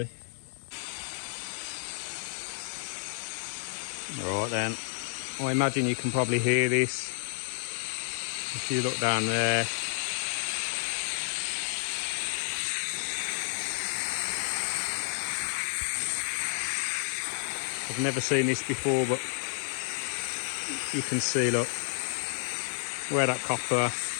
Right then, I imagine you can probably hear this if you look down there. I've never seen this before, but you can see, look, where that copper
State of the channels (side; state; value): right; silent; digital silence